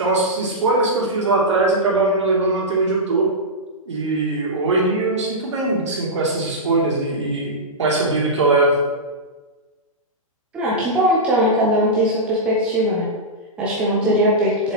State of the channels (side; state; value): both; normal; correlation -0.12